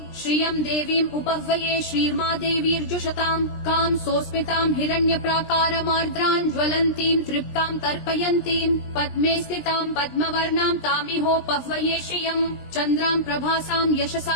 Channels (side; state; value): right; late; 20 ms